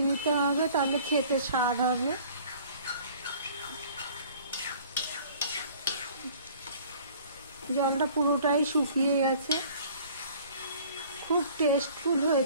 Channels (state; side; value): inverted; both; correlation -0.51